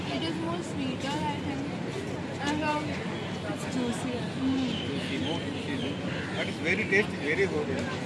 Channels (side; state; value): both; identical; correlation 1.00